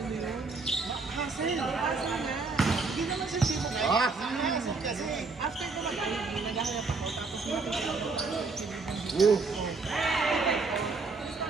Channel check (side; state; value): left; quieter; 4.1 dB